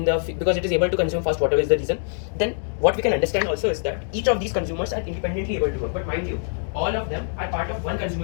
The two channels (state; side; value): silent; right; digital silence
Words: it is able to consume fast, whatever is the reason. Then what we can understand also is that each of these consumers are independently able to work. But mind you, all of them are part of 1